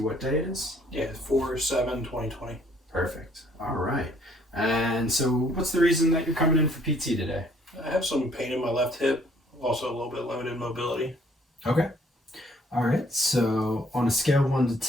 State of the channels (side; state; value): both; normal; correlation 0.62